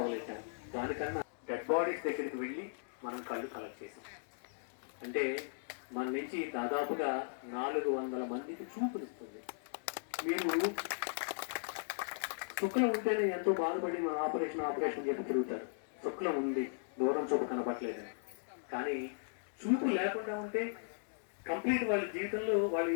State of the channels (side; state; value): right; silent; digital silence